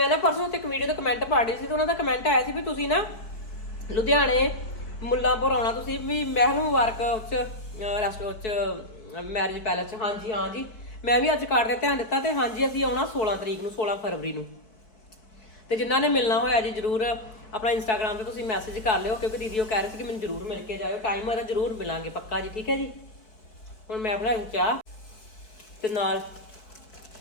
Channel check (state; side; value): late; right; 4.7 ms